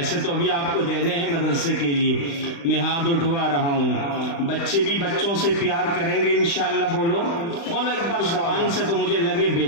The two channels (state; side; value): late; right; 35 ms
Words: تو ابھی آپ کو دینے ہیں مدرسے کے لیے، میں ہاتھ اٹھوا رہا ہوں۔ بچے بھی بچوں سے پیار کریں گے انشاءاللہ، بولو بولو ایک بار زبان سے تو مجھے لگے